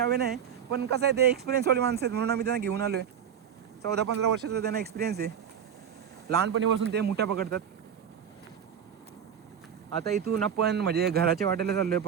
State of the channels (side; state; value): left; quieter; 8.4 dB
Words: नाही. पण कसं आहे ते एक्सपिरियन्सवाली माणसं आहेत म्हणून आम्ही त्यांना घेऊन आलोय. 14-15 वर्षाचा त्यांना एक्सपिरियन्स आहे. लहानपणीपासून ते मुठ्या पकडतात. आता इथून आपण म्हणजे घराच्या वाटेला चाललोय